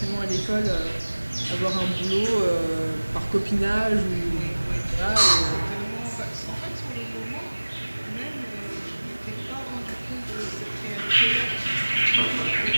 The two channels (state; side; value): inverted; both; correlation -1.00